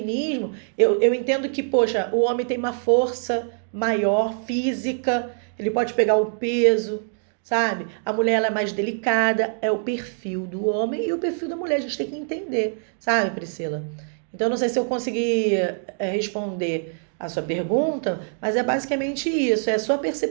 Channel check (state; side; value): silent; left; digital silence